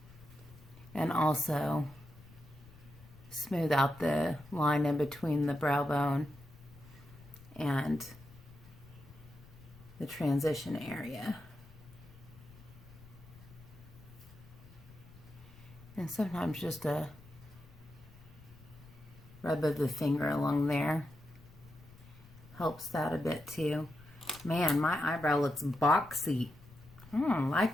And also smooth out the line in between the brow bone and the transition area. And sometimes just a rub of the finger along there helps that a bit too. Man, my eyebrow looks boxy. I don't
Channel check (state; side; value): noise; left; rumble, 21 dB below the sound